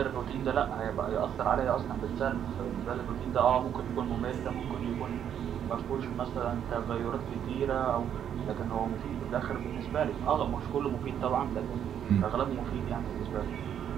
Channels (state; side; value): quieter; left; 9.2 dB